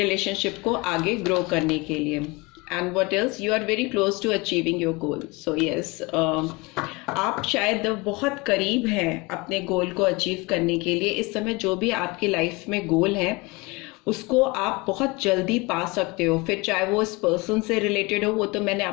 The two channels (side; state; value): right; quieter; 25.5 dB